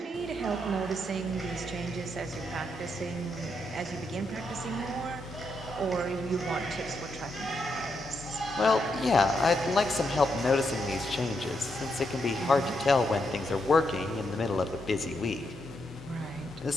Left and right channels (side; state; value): both; normal; correlation 0.80